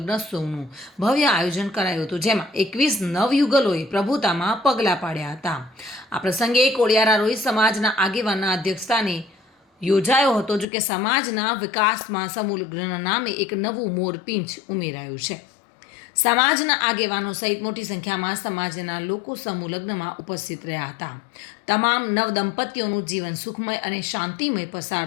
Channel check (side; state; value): right; drops out; at 10.7 s